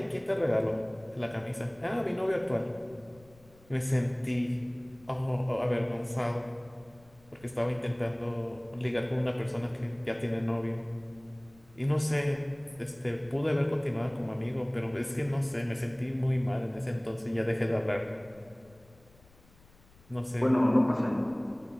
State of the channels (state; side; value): noise; left; rumble, 27 dB below the sound